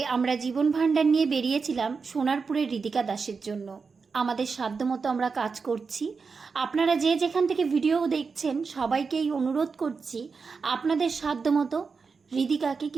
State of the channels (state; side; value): quieter; left; 5.0 dB